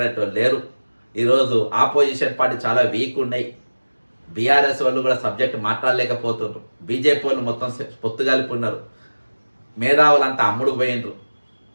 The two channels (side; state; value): both; inverted; correlation -1.00